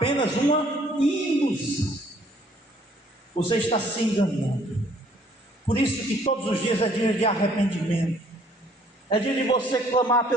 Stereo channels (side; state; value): both; normal; correlation 0.61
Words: uma ilusão. Você está se enganando. Por isso que todos os dias é dia de arrependimento, é dia de você clamar